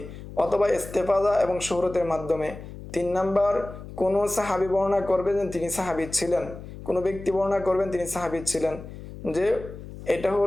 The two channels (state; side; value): noise; left; hum, 13 dB below the sound